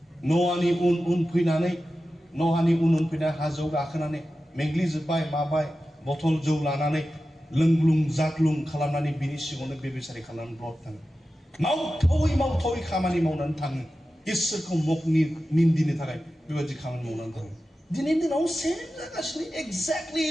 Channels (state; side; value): normal; both; correlation 0.93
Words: न'आनि उन फैनानै हाजोआव गाखोनानै मेंग्लिजोब्बाय माबाय बथल जौ लानानै लोंग्लुं जाग्लुं खालामनानै बिनि सिगाङावनो बेबिचारि खालामनानै ब्लड थाङो मावथावै खामानि मावनानै थाङो इसोरखौ निन्दिनो थाखाय बेबायदि खामानि मावनानै थाङो दिनैनि दिनाव सेम जागासिनो एक्जेक्टलि